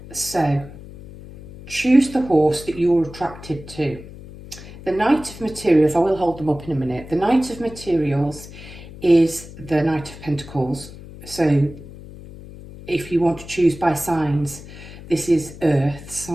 So, choose the horse that you're attracted to. The Knight of Materials, I will hold them up in a minute. The Knight of Materials is the Knight of Pentacles. So, if you want to choose by signs, this is Earth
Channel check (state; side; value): noise; left; hum, 16 dB below the sound